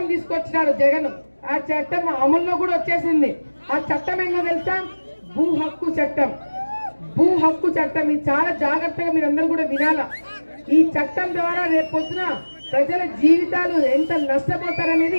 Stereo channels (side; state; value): both; inverted; correlation -1.00